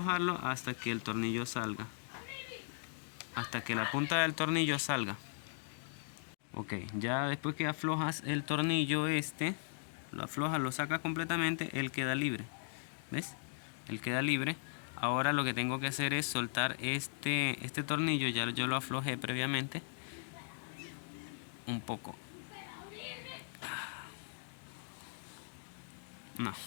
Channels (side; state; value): right; silent; digital silence